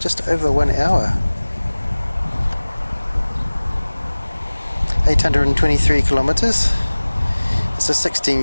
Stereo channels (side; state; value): both; inverted; correlation -1.00